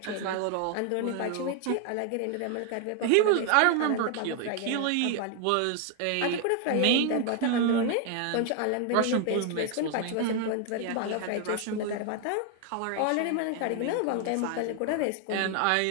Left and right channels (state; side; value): different; both; correlation 0.01